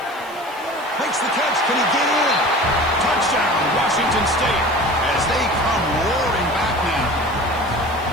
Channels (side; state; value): right; noise; hiss, 24 dB below the sound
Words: Makes the catch. Can he get in? Touchdown, Washington State, as they come roaring back now.